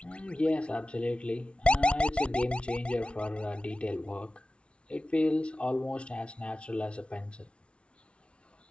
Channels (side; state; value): right; late; 0.059 ms